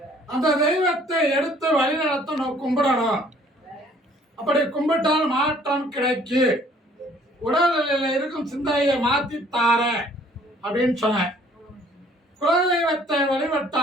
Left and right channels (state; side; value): normal; both; correlation 0.58